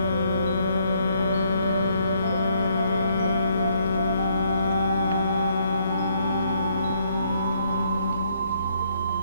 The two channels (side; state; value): both; inverted; correlation -0.69